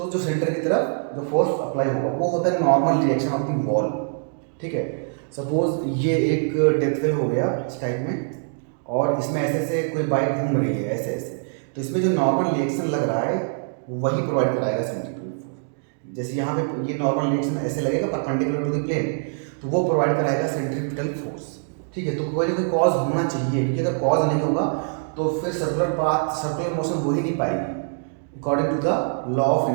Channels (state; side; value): silent; left; digital silence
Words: जो सेंटर की तरफ जो फोर्स अप्लाई होगा वो होता है normal reaction of the wall, ठीक है। सपोज ये एक डेथ फेल हो गया इस टाइप में, और इसमें ऐसे ऐसे कोई बाइक घूम रही है ऐसे ऐसे, तो इसमें जो नॉर्मल रिएक्शन लग रहा है वही प्रोवाइड कराएगा सेंट्रीफ्यूगल फोर्स। जैसे यहाँ पे ये नॉर्मल रिएक्शन ऐसे लगेगा परपेंडिकुलर टू द प्लेन, तो वो प्रोवाइड कराएगा सेंट्रीपिटल फोर्स। ठीक है, तो कोई ना कोई कॉज होना चाहिए, क्योंकि अगर कॉज नहीं होगा तो फिर सर्कुलर पाथ सर्कुलर मोशन हो ही नहीं पाएगी according to the law of